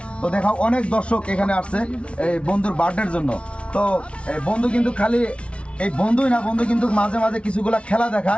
তো দেখাও অনেক দর্শক এখানে আসছে এই বন্ধুর বার্থডের জন্য। তো বন্ধু কিন্তু খালি এই বন্ধুই না, বন্ধু কিন্তু মাঝে মাঝে কিছুগুলা খেলা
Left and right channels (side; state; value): right; late; 0.060 ms